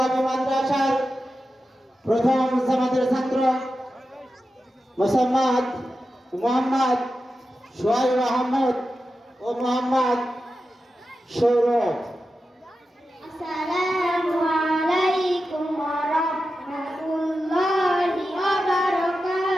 মাদ্রাসার প্রথম জামাতের ছাত্র মোহাম্মদ সোহাইব আহমদ ও মোহাম্মদ সৌরভ। আসসালামু আলাইকুম ওয়া রাহমাতুল্লাহি ওয়া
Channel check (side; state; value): both; normal; correlation 0.91